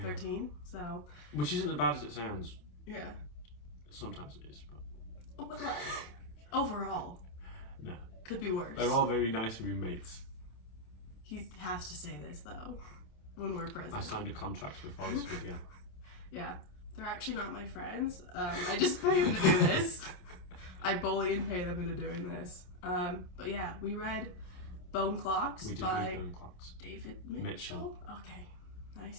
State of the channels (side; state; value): right; late; 28 ms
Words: 13. So. Which isn't as bad as it sounds. Yeah. Sometimes it is, but. But like, overall. No. Could be worse. They're all very nice roommates. He has to say this though, when we're present. I signed a contract before this video. Yeah. They're actually not my friends. I just pay them to do this. I bully and pay them into doing this. But yeah, we read Bone Clocks by Bone Clocks. David Mitchell. Okay,